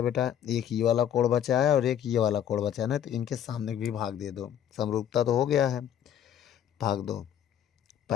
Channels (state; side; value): quieter; right; 9.9 dB